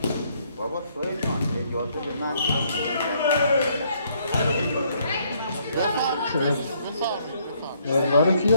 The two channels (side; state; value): both; inverted; correlation -0.68